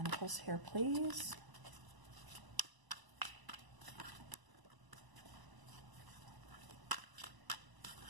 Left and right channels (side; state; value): left; late; 1.0 ms